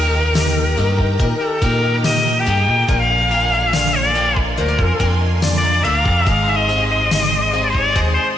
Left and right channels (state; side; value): normal; both; correlation 0.83